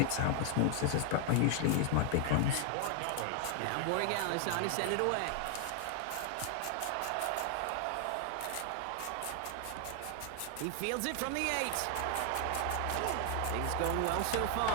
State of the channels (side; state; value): both; different; correlation 0.00